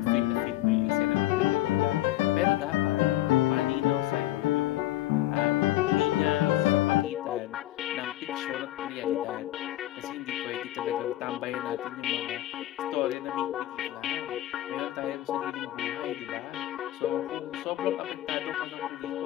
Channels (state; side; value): quieter; right; 15.2 dB